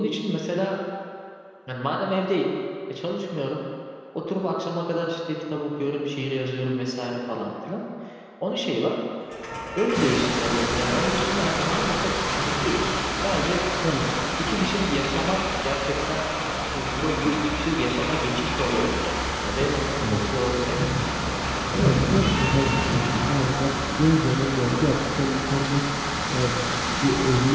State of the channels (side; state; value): both; identical; correlation 1.00